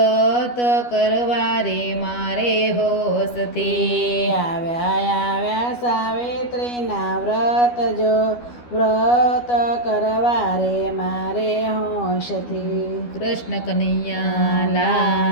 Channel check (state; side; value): late; right; 12 ms